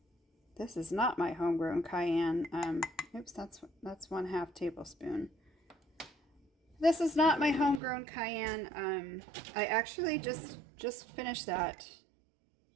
This is not my homegrown cayenne. Oops, that's 1/2 tablespoon. This is not my homegrown cayenne. I actually just finished that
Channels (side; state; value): left; drops out; at 7.8 s